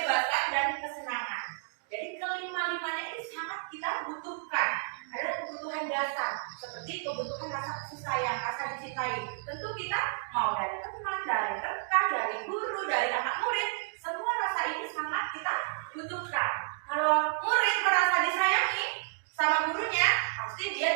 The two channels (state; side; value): silent; left; digital silence